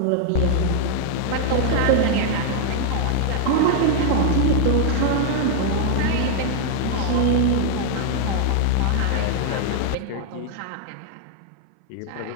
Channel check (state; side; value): different; both; correlation -0.01